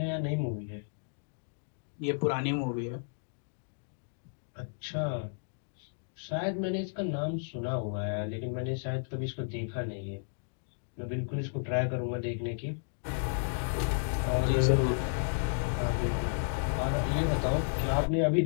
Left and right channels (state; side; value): silent; right; digital silence